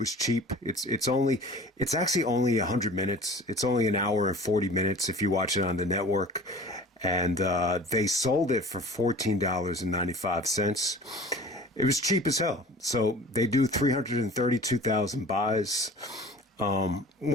cheap. It's actually only 100 minutes. It's only an hour and 40 minutes if you watch it on the network. And they sold it for $14.95. It was cheap as hell. So they do 332,000 buys.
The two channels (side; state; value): both; normal; correlation 0.43